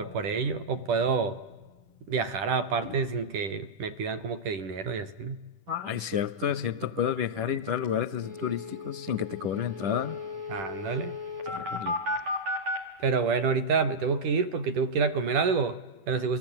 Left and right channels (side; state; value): left; late; 10 ms